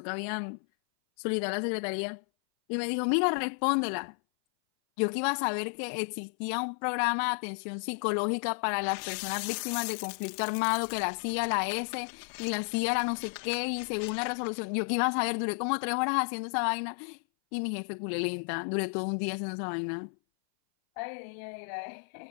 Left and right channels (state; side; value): silent; right; 57 dB below the other